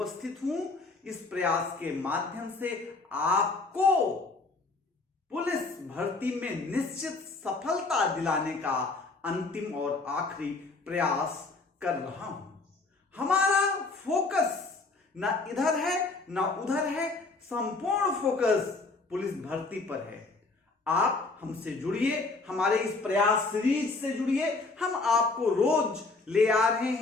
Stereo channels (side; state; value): right; quieter; 3.7 dB